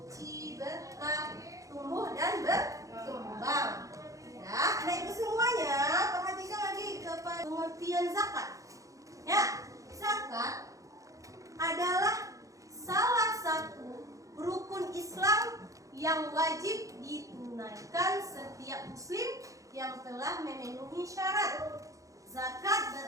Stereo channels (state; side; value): late; left; 0.16 ms